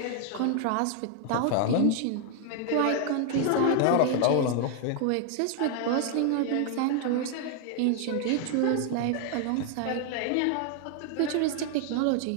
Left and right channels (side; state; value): both; different; correlation 0.00